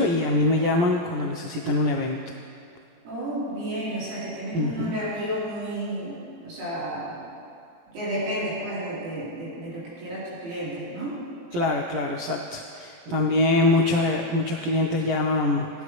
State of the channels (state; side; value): late; left; 17 ms